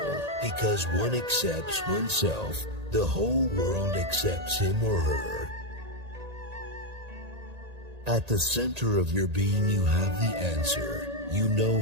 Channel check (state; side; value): late; left; 1.8 ms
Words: Because one accepts oneself, the whole world accepts him or her. At the center of your being you have the answer. You know